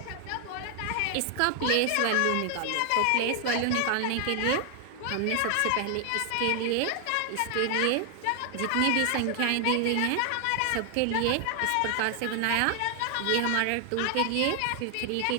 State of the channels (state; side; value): different; both; correlation 0.00